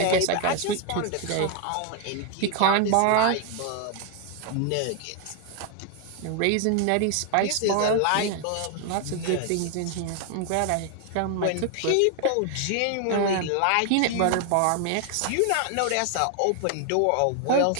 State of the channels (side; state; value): both; different; correlation 0.00